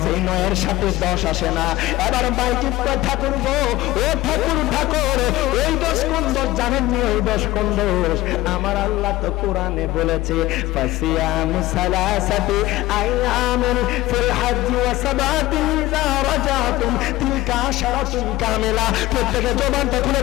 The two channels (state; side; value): quieter; right; 17.2 dB